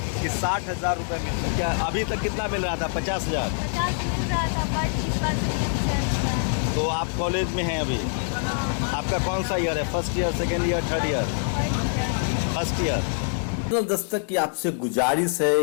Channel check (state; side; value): silent; right; 61 dB below the other